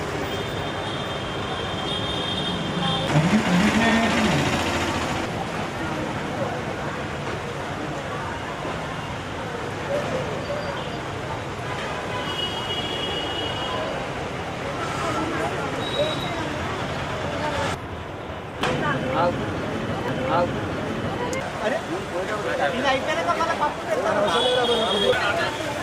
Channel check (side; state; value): both; identical; correlation 1.00